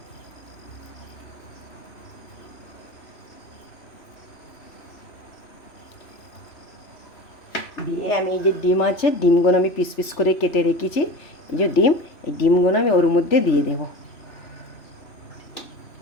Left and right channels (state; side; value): late; right; 3.5 ms